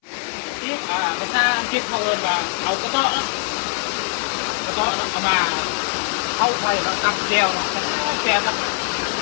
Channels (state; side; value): silent; right; 63 dB below the other